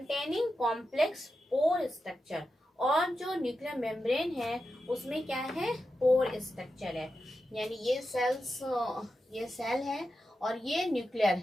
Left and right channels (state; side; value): normal; both; correlation 0.89